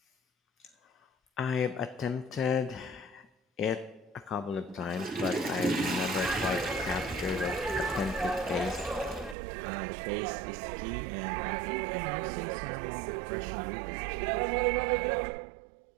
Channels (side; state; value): left; drops out; at 9.3 s